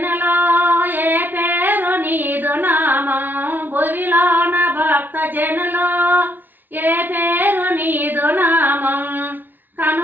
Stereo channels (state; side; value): late; left; 0.091 ms